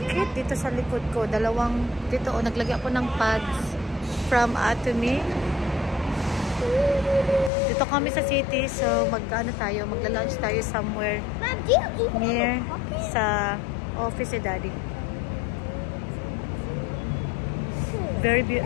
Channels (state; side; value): drops out; right; at 7.5 s